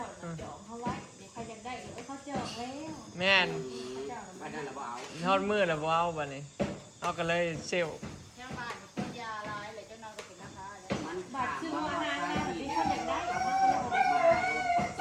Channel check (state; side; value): identical; both; correlation 1.00